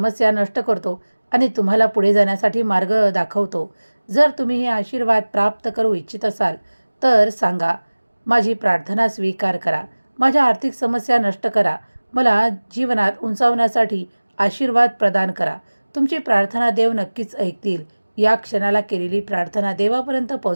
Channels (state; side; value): inverted; both; correlation -1.00